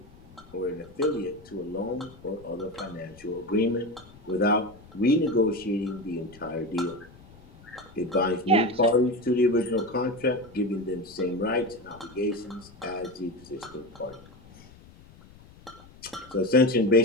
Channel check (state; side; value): noise; left; rumble, 23 dB below the sound